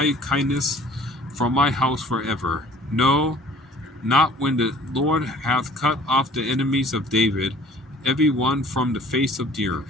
kindness from my house forever. No, not when the Lord hath cut off the enemies of David, every one from the face of the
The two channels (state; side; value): normal; both; correlation 0.51